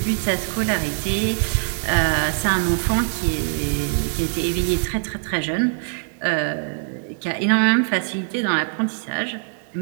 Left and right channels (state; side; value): silent; left; digital silence